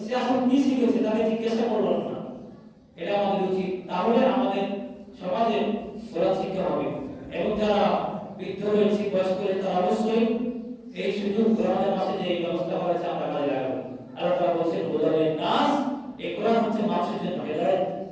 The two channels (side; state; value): both; identical; correlation 1.00